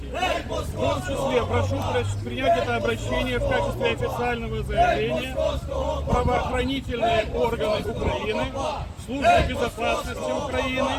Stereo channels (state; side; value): identical; both; correlation 1.00